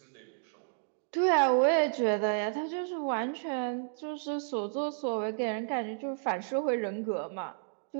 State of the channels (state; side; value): silent; left; digital silence